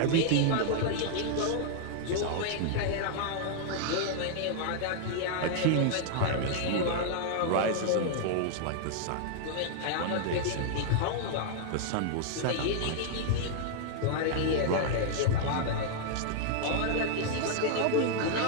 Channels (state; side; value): different; both; correlation -0.01